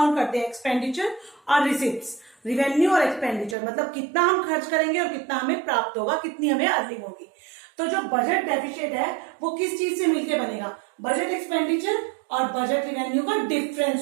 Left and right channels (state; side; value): drops out; left; at 3.6 s